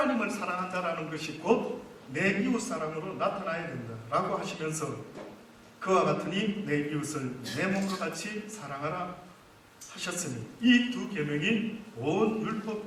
사랑한다라는 것이 곧 내 이웃 사랑으로 나타나야 된다 라고 하시면서 그와 같으니 내 이웃을 내 몸과 같이 사랑하라 하셨으니 이 두 계명이 온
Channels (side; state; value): both; identical; correlation 1.00